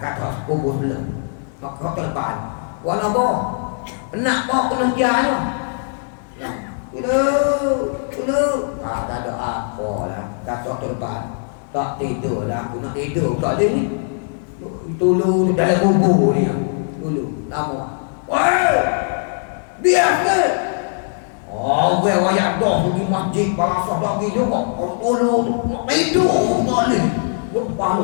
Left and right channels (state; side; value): silent; right; digital silence